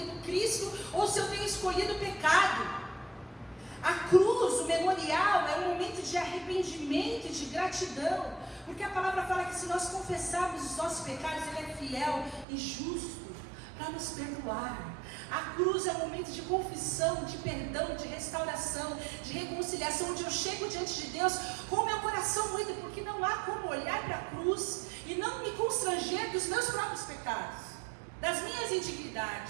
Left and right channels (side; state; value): left; drops out; at 12.5 s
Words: Cristo ou se eu tenho escolhido o pecado. A cruz, o memorial, é um momento de arrependimento e de gratidão. Porque a palavra fala que se nós confessarmos os nossos pecados, Ele é fiel e justo para nos perdoar. A cruz é um momento de confissão, de perdão, de restauração, de reconciliação, onde eu chego diante de Deus com o meu coração moído, porque não há como olhar para a cruz e não me constranger dos meus próprios pecados, das minhas